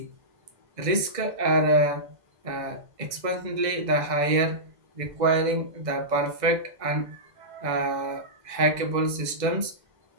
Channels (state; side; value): late; left; 2.0 ms